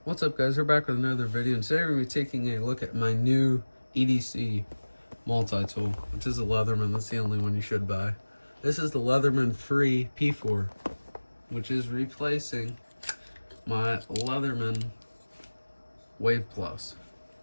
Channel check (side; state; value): both; inverted; correlation -1.00